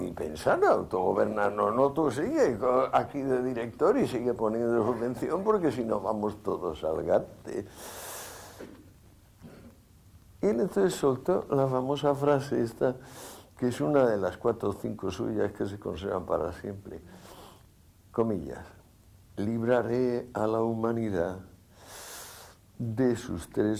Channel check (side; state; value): both; identical; correlation 1.00